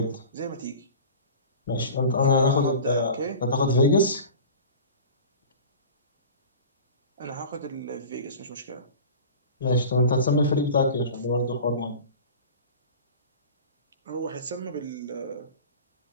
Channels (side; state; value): both; inverted; correlation -0.37